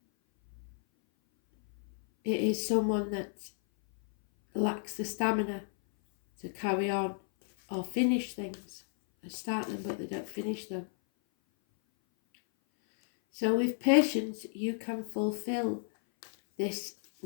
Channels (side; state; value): right; silent; 56 dB below the other